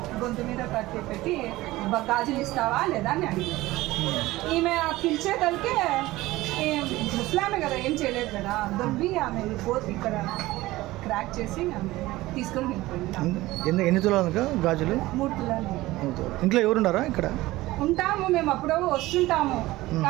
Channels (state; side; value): quieter; left; 18.1 dB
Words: గొంతు మీద పెట్టి గాజులు ఇస్తావా లేదా అని అడిగింది. ఈమె పిలిచే కలికే ముస్లామే కదా, ఏం చేయలేదు కదా, దొబ్బి ఆమె పోతు ఇక్కడ క్రాక్ చేసి ఆమె తీసుకొని వెళ్ళిపోయింది. ఎన్ని తులాలు గాజులు? 3 తులాలు. ఇంట్లో ఎవరున్నారా? ఇక్కడ ఉంటాము మేము, అప్పుడు వస్తుంటాము.